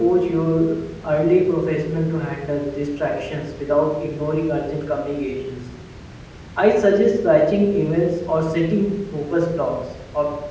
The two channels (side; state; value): both; identical; correlation 1.00